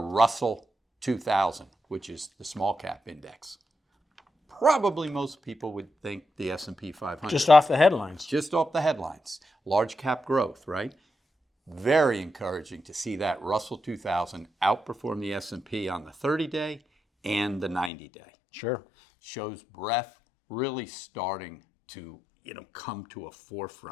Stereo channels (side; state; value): right; drops out; at 17.9 s